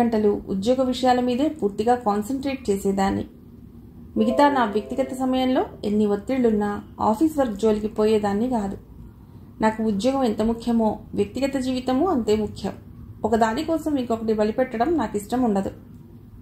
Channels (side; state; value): both; identical; correlation 1.00